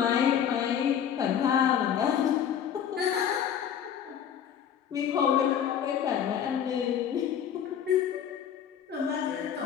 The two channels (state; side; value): quieter; right; 8.8 dB